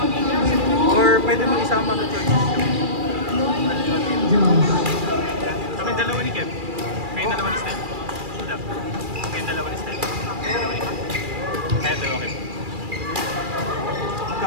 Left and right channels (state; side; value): late; left; 2.4 ms